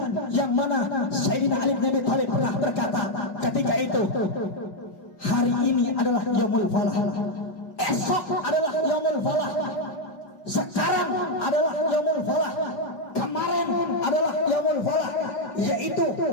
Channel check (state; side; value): late; right; 5.0 ms